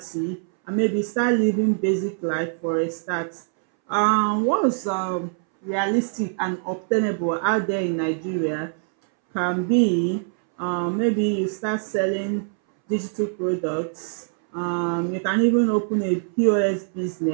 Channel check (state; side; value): silent; left; 62 dB below the other